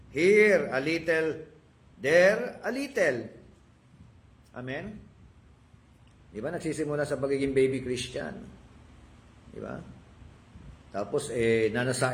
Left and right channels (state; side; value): identical; both; correlation 1.00